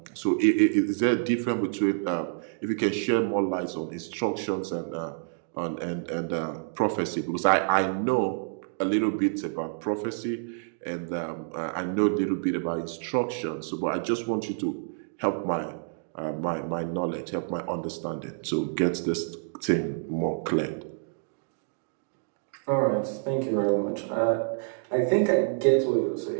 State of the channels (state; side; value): silent; left; digital silence